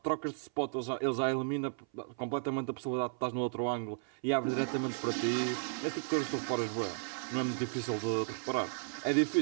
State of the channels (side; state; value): left; silent; 55 dB below the other